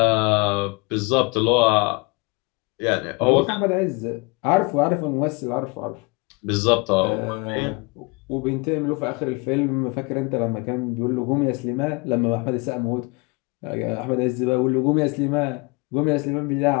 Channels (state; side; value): quieter; right; 27.9 dB